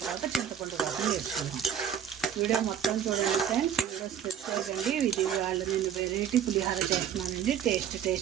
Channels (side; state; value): left; quieter; 8.9 dB